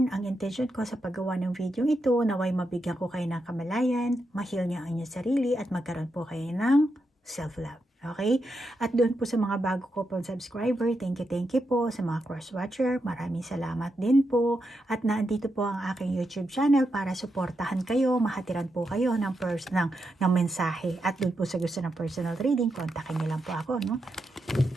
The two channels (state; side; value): normal; both; correlation 0.85